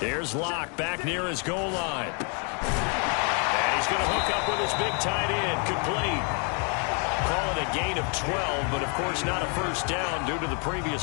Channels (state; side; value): quieter; right; 38.3 dB